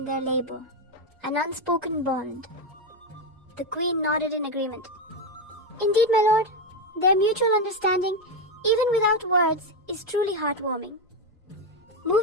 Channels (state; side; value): normal; both; correlation 0.09